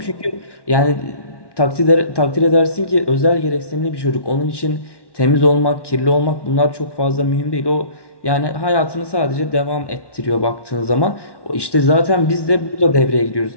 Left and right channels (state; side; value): late; right; 1.1 ms